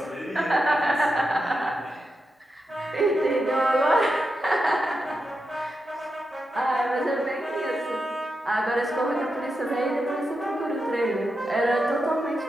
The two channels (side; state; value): both; normal; correlation 0.87